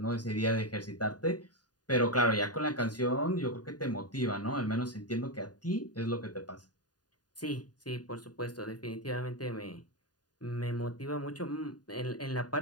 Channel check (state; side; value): late; right; 0.69 ms